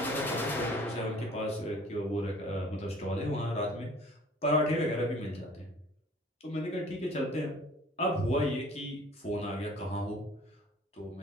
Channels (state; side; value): normal; both; correlation 0.50